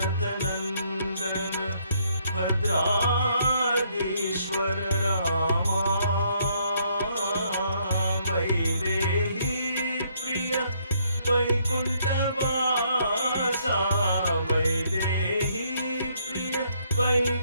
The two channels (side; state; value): both; inverted; correlation -0.69